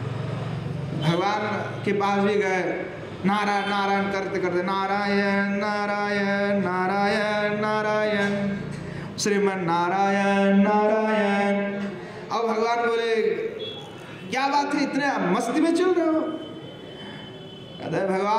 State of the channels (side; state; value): both; identical; correlation 1.00